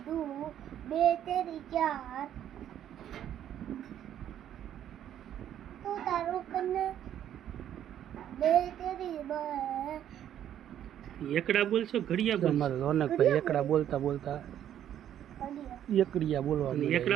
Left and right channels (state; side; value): quieter; left; 10.6 dB